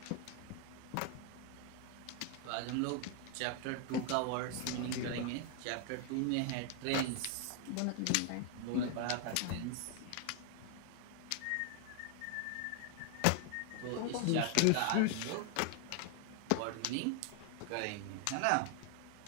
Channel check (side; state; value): both; different; correlation 0.00